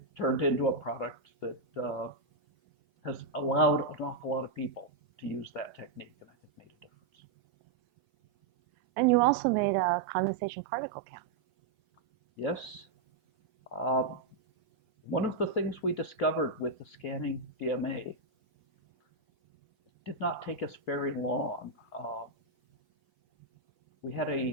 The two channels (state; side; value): quieter; left; 3.8 dB